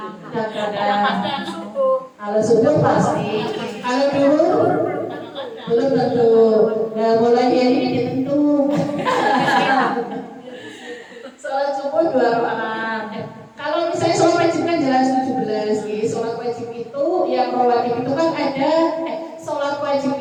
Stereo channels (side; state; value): both; identical; correlation 1.00